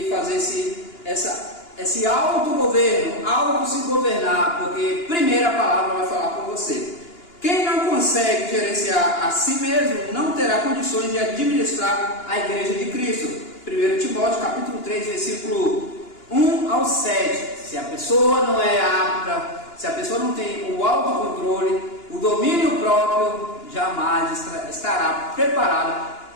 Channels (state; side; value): late; right; 2.9 ms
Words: fazer esse autogoverno, auto-se governar, porque primeiro a palavra vai falar com você. Quem não consegue gerenciar a si mesmo não terá condições de administrar a igreja de Cristo. 1 Timóteo capítulo 3, versículo 1 ao 7. Se a pessoa não é apta, se a pessoa não tem o autocontrole, o domínio próprio, jamais estará preparada